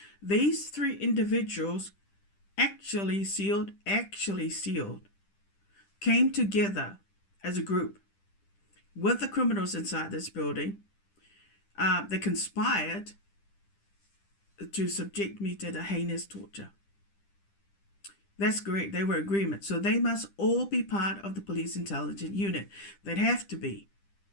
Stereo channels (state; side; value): late; right; 10 ms